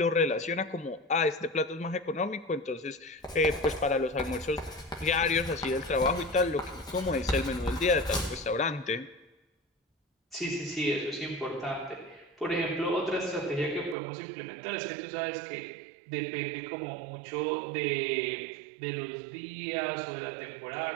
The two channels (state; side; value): drops out; left; at 14.0 s